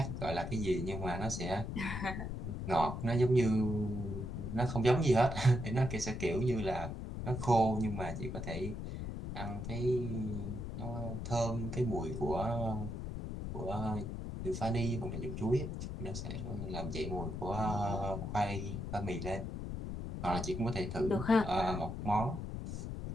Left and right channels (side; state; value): left; noise; rumble, 5 dB below the sound